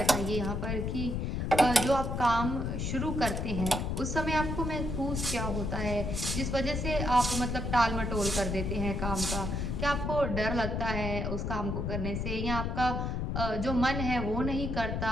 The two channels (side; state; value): left; noise; rumble, 1 dB below the sound